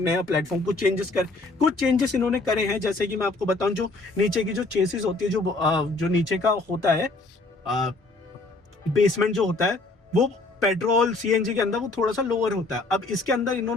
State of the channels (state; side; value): quieter; right; 3.2 dB